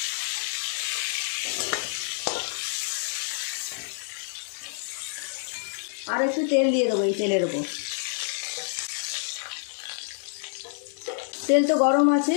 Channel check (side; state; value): right; silent; digital silence